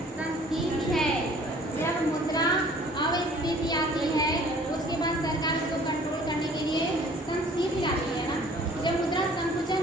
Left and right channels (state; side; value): normal; both; correlation 0.53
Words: संस्फीति है जब मुद्रा अविस्फीति आती है, उसके बाद सरकार इसको कंट्रोल करने के लिए संस्फीति आती है ना। जब मुद्रा संकुचन